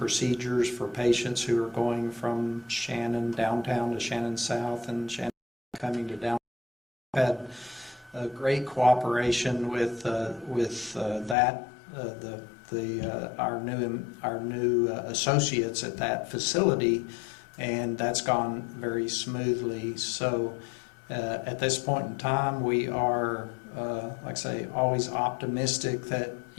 for patients who are going from Shannon downtown to Shannon South and Shannon coming to downtown. We've had a great cooperation with that. Our new associates at that facility, and that's gone very smoothly. So at this point in time, we are, like I say, always optimistic that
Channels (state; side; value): drops out; right; at 11.4 s